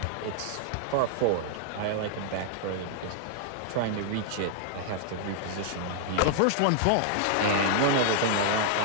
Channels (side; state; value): both; different; correlation 0.00